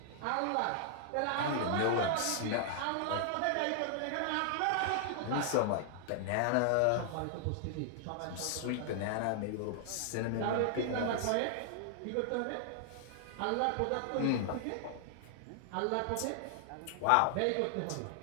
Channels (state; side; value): different; both; correlation 0.00